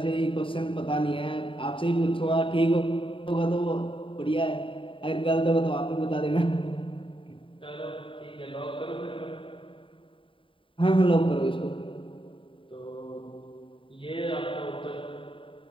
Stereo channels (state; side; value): late; right; 0.25 ms